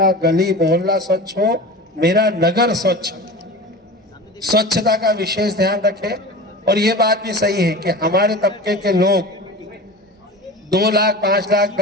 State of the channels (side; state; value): both; normal; correlation 0.33